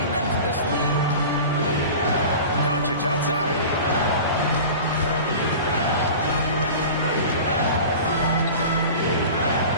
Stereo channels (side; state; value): both; inverted; correlation -0.36